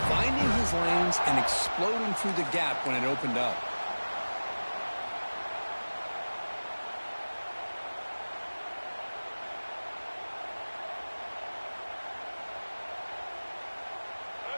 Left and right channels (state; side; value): inverted; both; correlation -1.00